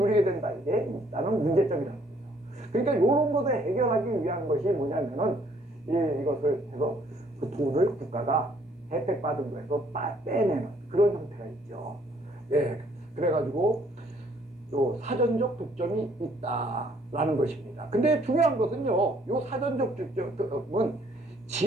된다. 이게 있다는 문제점이라는 거죠. 그러니까 이런 것을 해결하기 위한 것이 뭐냐면은 이것을 해서 그 돈을 국가가 혜택받은 거에서 빼내는 그런 형태가 있죠. 그래가지고 요 사전적 독점이 있다라는 것입니다. 근데 중요한 것은요, 요 사전적 독점은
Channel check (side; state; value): both; normal; correlation 0.64